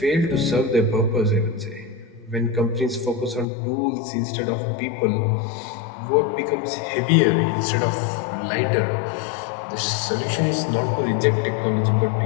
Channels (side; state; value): right; drops out; at 3.5 s